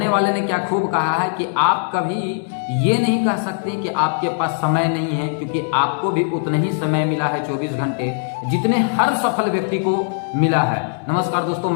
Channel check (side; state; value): right; silent; 61 dB below the other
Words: वाले ने क्या खूब कहा है कि आप कभी ये नहीं कह सकते कि आपके पास समय नहीं है, क्योंकि आपको भी उतना ही समय मिला है 24 घंटे जितने हर सफल व्यक्ति को मिला है। नमस्कार दोस्तों,